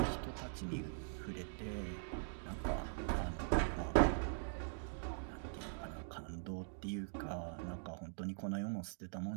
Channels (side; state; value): left; silent; digital silence